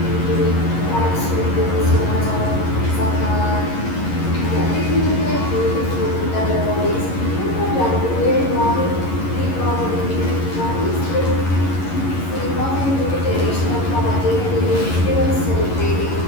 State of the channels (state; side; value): late; right; 11 ms